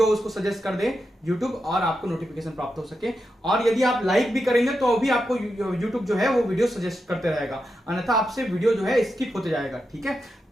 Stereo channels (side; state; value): both; normal; correlation 0.87